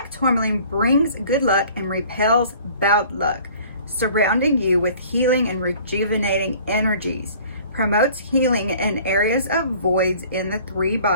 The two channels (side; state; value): both; inverted; correlation -0.51